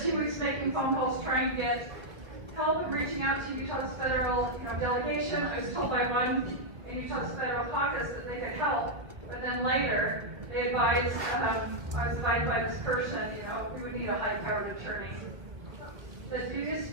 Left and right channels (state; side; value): late; left; 1.9 ms